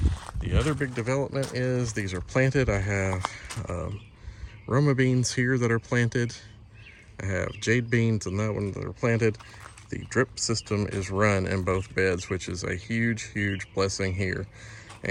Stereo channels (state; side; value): identical; both; correlation 1.00